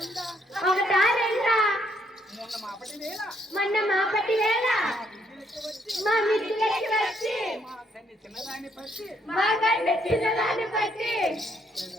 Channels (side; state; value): both; normal; correlation 0.72